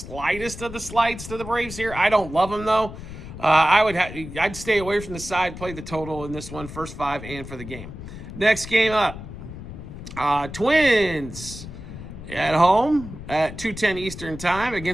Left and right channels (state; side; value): noise; left; rumble, 12 dB below the sound